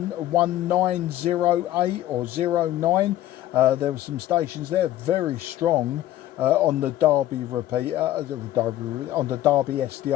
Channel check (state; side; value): quieter; right; 13.8 dB